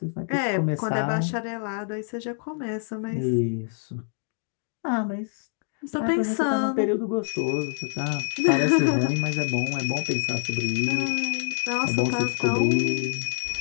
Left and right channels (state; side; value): silent; right; 61 dB below the other